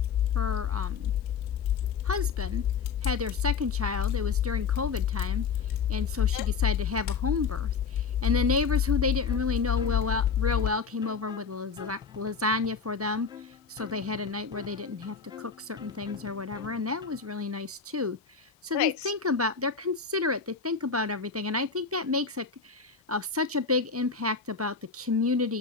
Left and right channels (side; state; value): right; quieter; 5.5 dB